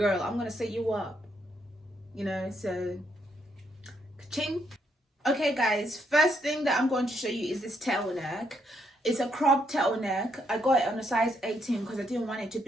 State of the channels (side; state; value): both; normal; correlation 0.76